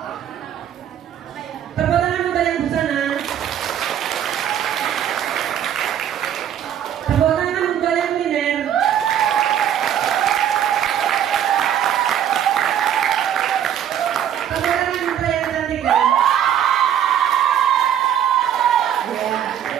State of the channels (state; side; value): quieter; left; 9.9 dB